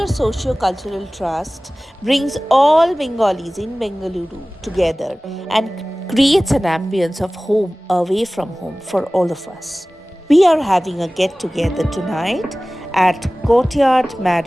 Socio-Cultural Trust brings all Bengalis in Bengaluru together and creates an ambience of home away from home for all of us. We are having a get together tonight at Courtyard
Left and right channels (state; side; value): normal; both; correlation 0.98